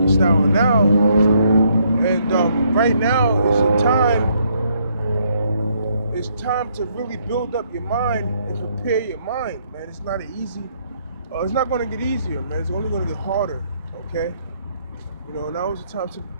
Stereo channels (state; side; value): inverted; both; correlation -0.70